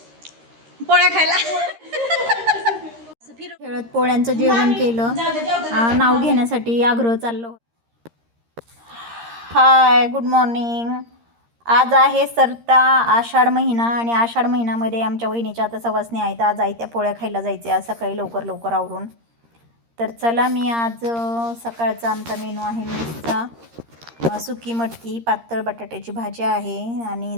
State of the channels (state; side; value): late; left; 13 ms